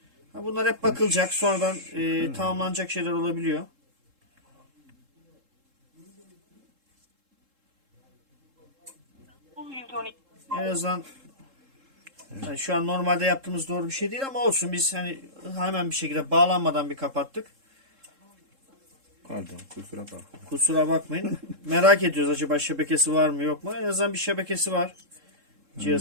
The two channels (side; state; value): left; late; 3.7 ms